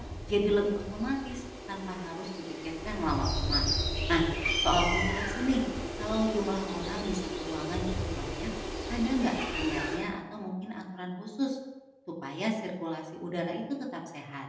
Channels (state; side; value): identical; both; correlation 1.00